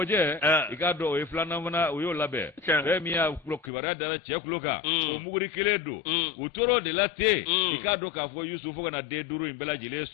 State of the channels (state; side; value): drops out; right; at 3.7 s